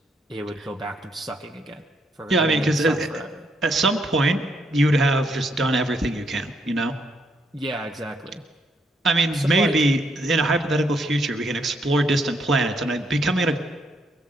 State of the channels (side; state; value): both; normal; correlation 0.74